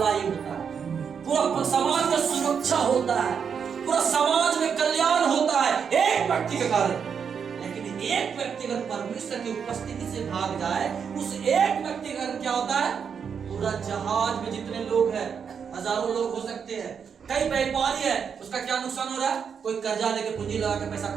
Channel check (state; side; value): quieter; left; 6.8 dB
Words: होता है, पूरा समाज का सुरक्षा होता है, पूरा समाज में कल्याण होता है एक व्यक्ति के कारण। लेकिन एक व्यक्ति अगर परमेश्वर की उपस्थिति से भाग जाए, उस एक व्यक्ति का क्या होता है? पूरा जहाज में जितने लोग हैं, हजारों लोग हो सकते हैं, कई व्यापारी है, उसका क्या नुकसान हो रहा है? कोई कर्जा लेके पूंजी लगा के पैसा